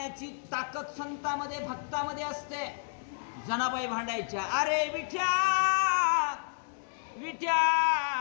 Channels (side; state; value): right; silent; 57 dB below the other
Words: ताकद संतामध्ये भक्तामध्ये असते जनाबाई भांडायच्या अरे विठ्या विठ्या